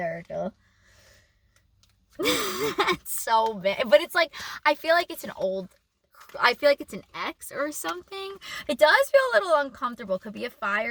That's so bad. But it's like, I feel like it's an ex or something. It does feel a little uncomfortable. Could be a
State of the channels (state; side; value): identical; both; correlation 1.00